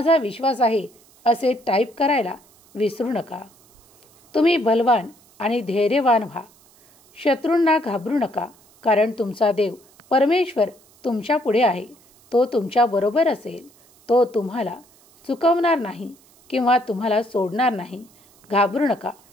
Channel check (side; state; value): right; noise; hiss, 29 dB below the sound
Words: विश्वास आहे असे टाईप करायला विसरू नका. तुम्ही बलवान आणि धैर्यवान व्हा. शत्रूंना घाबरू नका, कारण तुमचा देव परमेश्वर तुमच्या पुढे आहे. तो तुमच्याबरोबर असेल. तो तुम्हाला चुकवणार नाही किंवा तुम्हाला सोडणार नाही. घाबरू नका